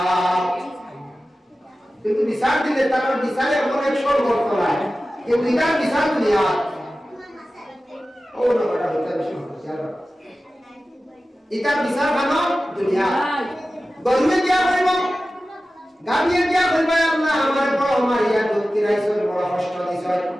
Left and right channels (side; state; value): both; normal; correlation 0.95